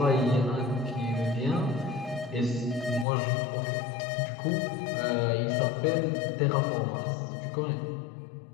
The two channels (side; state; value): right; drops out; at 3.1 s